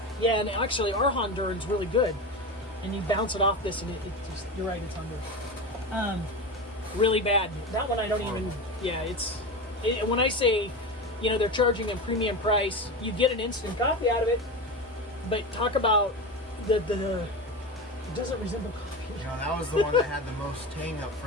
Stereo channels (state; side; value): normal; both; correlation 0.24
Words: Yeah, and actually, our Honduran's really good. And you bounce it off this, and it just, you're right, it's Honduras. Really bad. That one I don't even. Yeah, when I say, they're charging a premium price, you get an instant coffee out of it. But talk about it doesn't resemble coffee. That was the one that had the most tang up